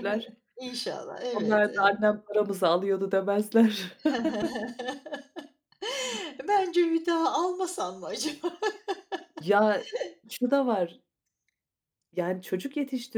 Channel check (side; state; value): both; identical; correlation 1.00